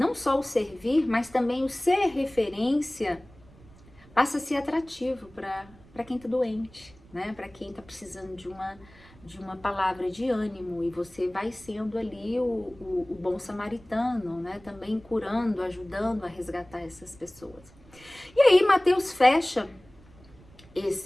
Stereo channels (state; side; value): noise; right; rumble, 24 dB below the sound